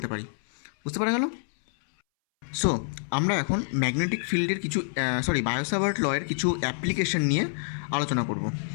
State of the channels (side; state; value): right; silent; 60 dB below the other